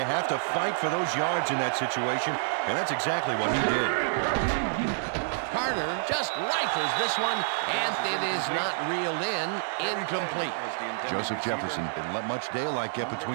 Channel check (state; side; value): silent; left; digital silence